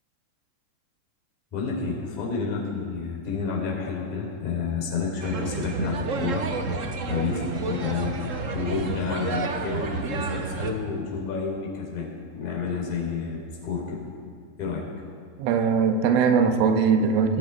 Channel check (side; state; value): left; late; 3.7 ms